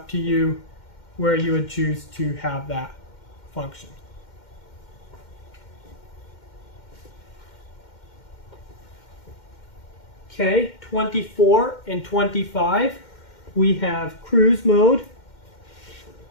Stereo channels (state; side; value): late; right; 2.1 ms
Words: to you where you would choose to have that function. Okay, 24 and 25, we have cruise mode.